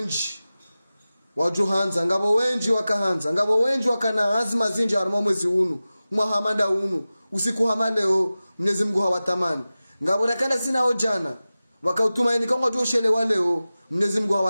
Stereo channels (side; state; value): both; inverted; correlation -0.96